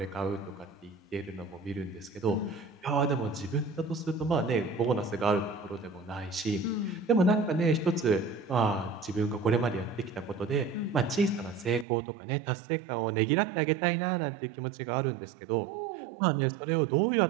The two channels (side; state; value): left; drops out; at 11.9 s